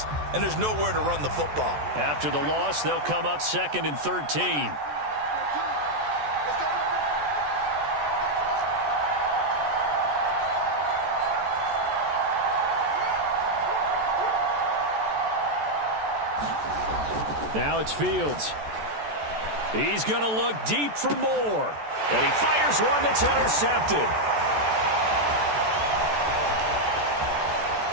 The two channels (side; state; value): left; late; 14 ms